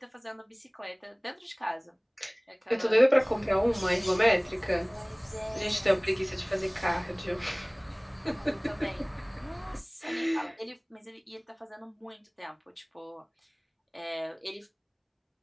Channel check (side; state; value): both; identical; correlation 1.00